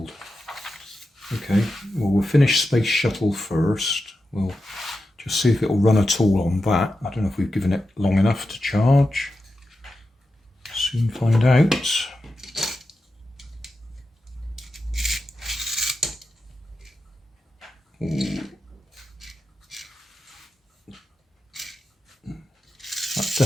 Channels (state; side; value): normal; both; correlation 0.90